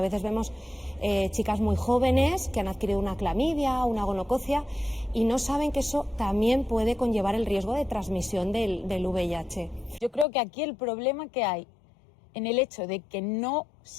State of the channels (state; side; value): drops out; right; at 10.2 s